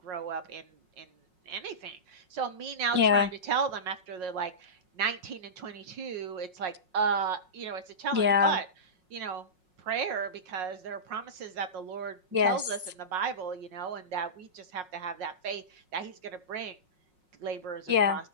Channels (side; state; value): left; late; 5.5 ms